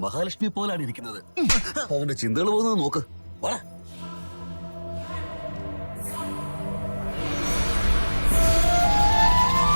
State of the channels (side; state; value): both; inverted; correlation -1.00